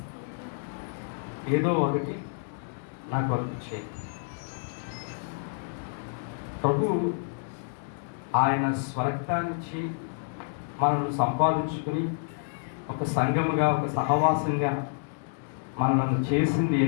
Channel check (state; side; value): silent; right; digital silence